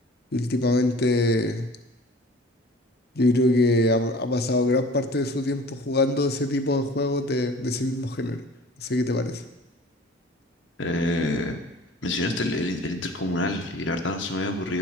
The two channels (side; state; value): both; normal; correlation 0.45